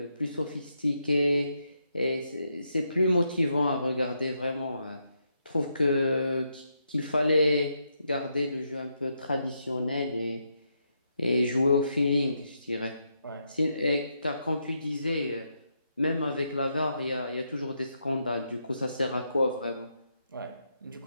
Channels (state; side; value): inverted; both; correlation -0.80